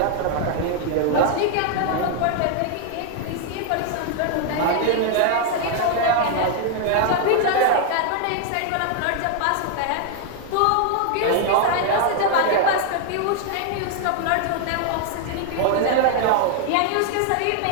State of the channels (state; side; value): different; both; correlation 0.00